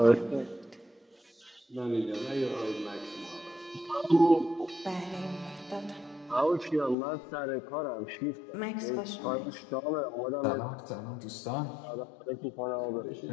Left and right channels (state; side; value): drops out; right; at 7.0 s